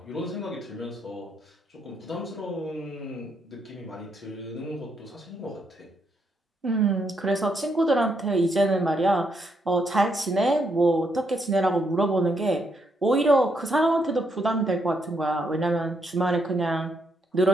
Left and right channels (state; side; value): normal; both; correlation 0.77